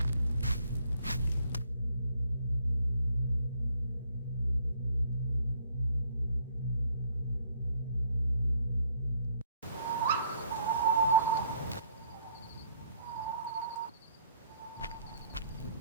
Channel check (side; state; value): both; inverted; correlation -0.66